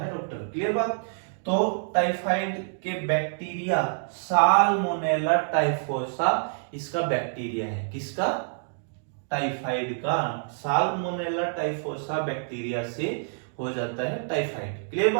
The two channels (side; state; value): left; silent; digital silence